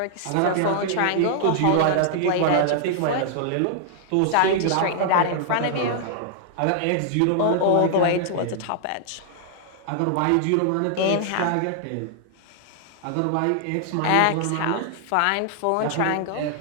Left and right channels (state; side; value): different; both; correlation -0.01